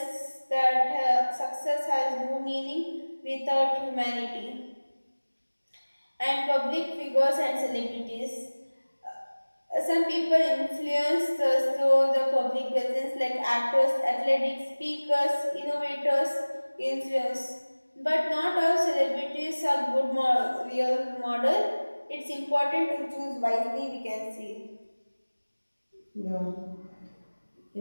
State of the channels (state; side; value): inverted; both; correlation -1.00